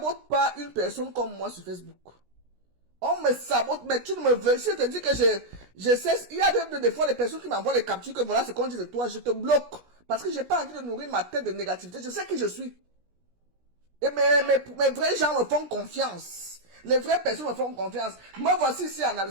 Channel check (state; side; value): late; left; 17 ms